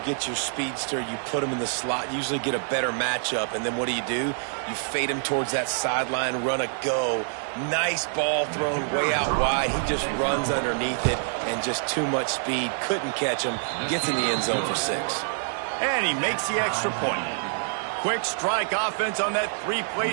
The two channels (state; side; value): silent; left; 61 dB below the other